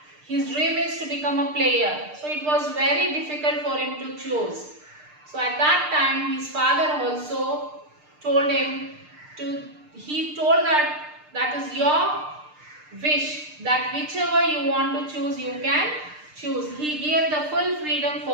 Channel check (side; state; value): left; late; 6.6 ms